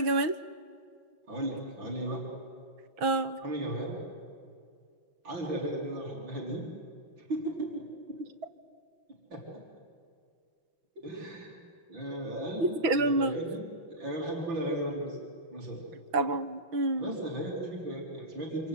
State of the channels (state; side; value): late; left; 6.1 ms